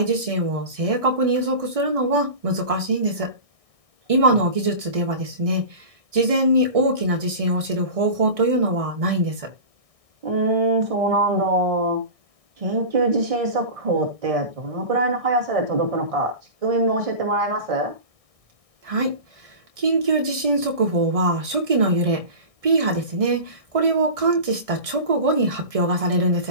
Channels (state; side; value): late; left; 1.6 ms